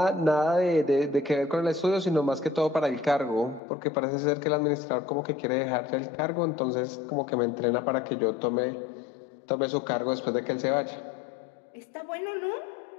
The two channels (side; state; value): right; drops out; at 3.6 s